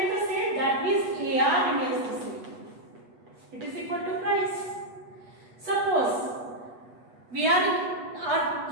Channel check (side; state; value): left; late; 8.2 ms